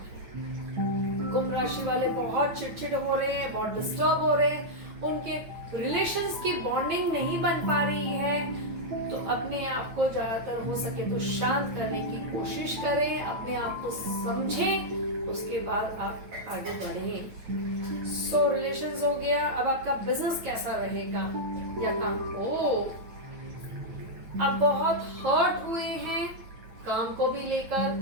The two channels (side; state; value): left; late; 9.1 ms